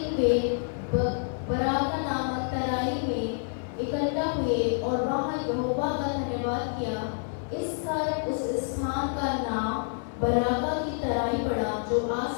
वे बराका नामक तराई में इकट्ठा हुए और वहां यहोवा का धन्यवाद किया। इस कारण उस स्थान का नाम बराका की तराई पड़ा, जो आज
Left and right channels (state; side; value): silent; right; digital silence